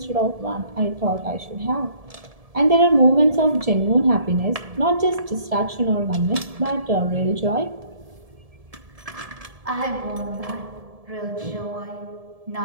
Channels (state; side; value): late; left; 1.7 ms